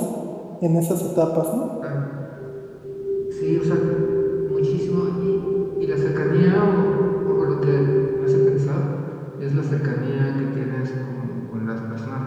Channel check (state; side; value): identical; both; correlation 1.00